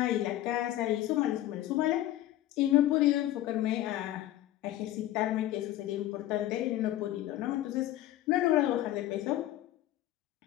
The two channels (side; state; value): right; quieter; 14.1 dB